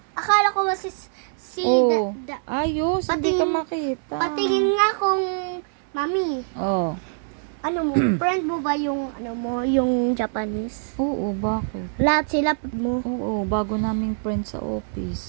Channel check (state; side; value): silent; left; 60 dB below the other